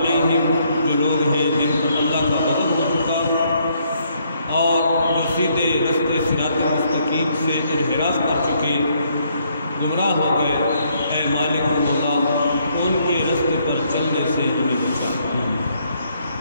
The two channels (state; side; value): inverted; both; correlation -0.70